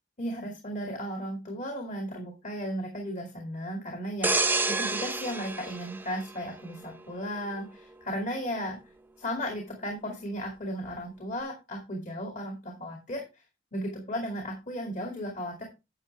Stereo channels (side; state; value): both; normal; correlation 0.14